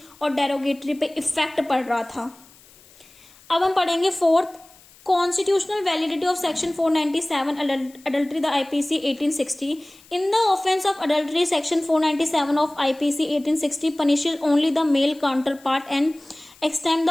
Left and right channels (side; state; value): left; noise; hiss, 26 dB below the sound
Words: और डेरोगेटरी पे इफेक्ट पड़ रहा था। अब हम पढ़ेंगे fourth, Constitutional validity of Section 497 adultery, the IPC 1860. In the offence of adultery, Section 497 of IPC 1860 punishes only the male counterpart and extend